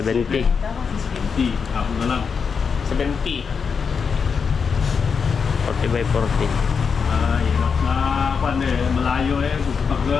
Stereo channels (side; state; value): right; quieter; 5.9 dB